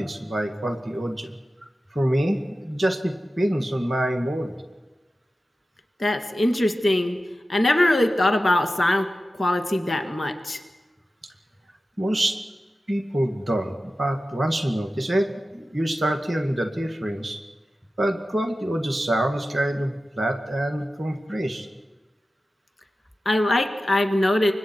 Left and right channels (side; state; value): both; normal; correlation 0.94